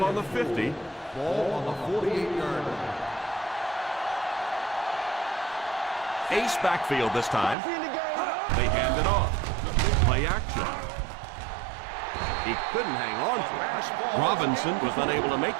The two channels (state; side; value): drops out; left; at 7.6 s